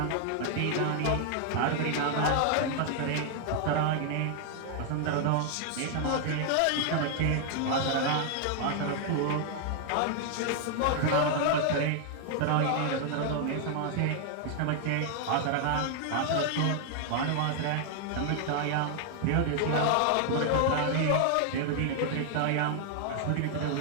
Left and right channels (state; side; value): different; both; correlation 0.00